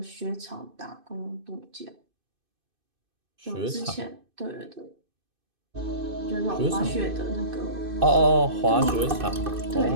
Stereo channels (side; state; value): left; late; 2.5 ms